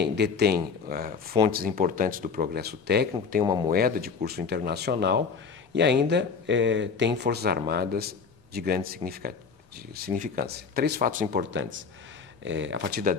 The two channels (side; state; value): right; quieter; 5.4 dB